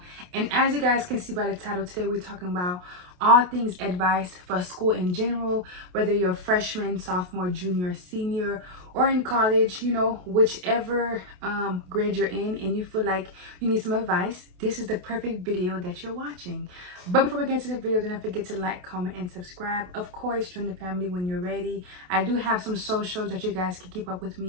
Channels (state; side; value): late; left; 28 ms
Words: and as you guys can see by the title, today we're talking about all things advice for school in general, whether you're a freshman, sophomore, junior, senior, or in college, whichever grade you're in and you feel like you need some advice, this is the perfect video that you're watching. But before we get into the video, don't forget to like, comment, and subscribe. Of course, join the family when you're ready. I do have some socials that you guys can keep up with